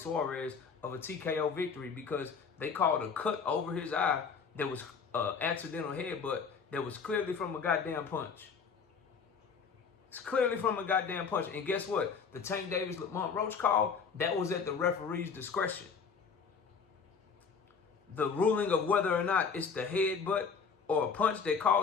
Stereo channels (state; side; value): quieter; right; 5.8 dB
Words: of a TKO victory because they called a cut over his eye that was accidental headbutt that was clearly from a goddamn punch. It's clearly from a goddamn punch. And guess what? The Tank Davis Lamont Roach call, that was at the referee's discretion. The ruling of whether or not it's the headbutt or a punch that